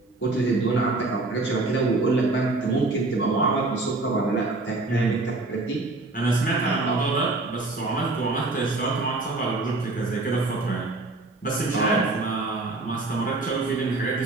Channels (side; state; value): left; quieter; 3.1 dB